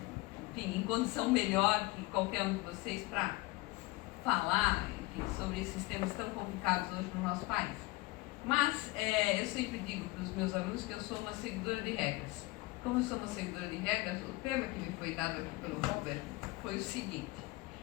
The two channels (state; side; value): quieter; right; 21.5 dB